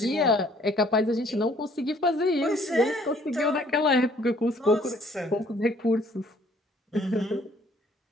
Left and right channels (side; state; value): both; normal; correlation 0.61